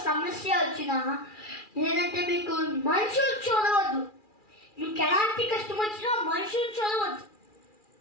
సమస్య వచ్చినా, లేదంటే మీకు మనుషులు చూడవద్దు. మీకు ఎలాంటి కష్టం వచ్చినా మనుషులు చూడవద్దు,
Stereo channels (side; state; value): right; late; 2.4 ms